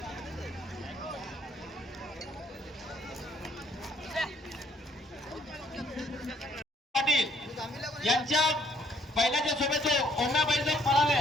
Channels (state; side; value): normal; both; correlation 0.65